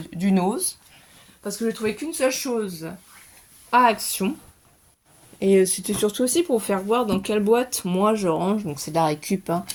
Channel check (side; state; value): both; identical; correlation 1.00